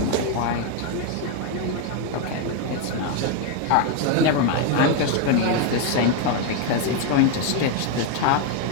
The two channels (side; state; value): both; different; correlation 0.01